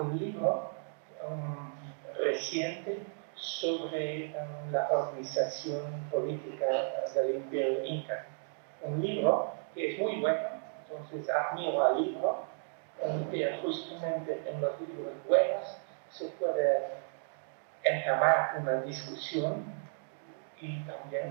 libro reciente sobre la organización política del Imperio Inca. Un libro que es muy bueno, entonces admiro al libro, pero justamente en los libros buenos se puede entamar una discusión y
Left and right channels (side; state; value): left; silent; digital silence